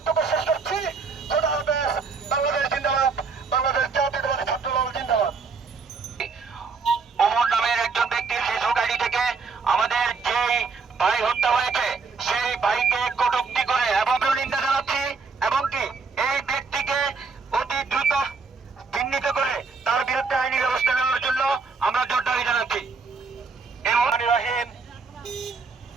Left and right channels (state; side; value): quieter; left; 4.8 dB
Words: শেষ করছি। খোদা হাফেজ। বাংলাদেশ জিন্দাবাদ। বাংলাদেশ জাতীয়তাবাদী ছাত্রদল জিন্দাবাদ। ওমর নামের একজন ব্যক্তির ফেসবুক আইডি থেকে আমাদের যেই ভাই হত্যা হয়েছে সেই ভাইকে কটূক্তি করে এবং নিন্দা জানাচ্ছি, এবং কি এই ব্যক্তিকে অতি দ্রুত চিহ্নিত করে তার বিরুদ্ধে আইনি ব্যবস্থা নেওয়ার জন্য আমরা জোর দাবি জানাচ্ছি।